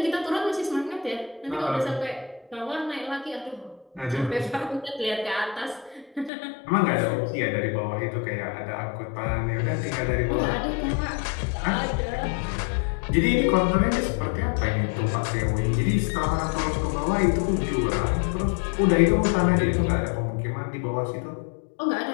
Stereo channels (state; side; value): drops out; right; at 6.3 s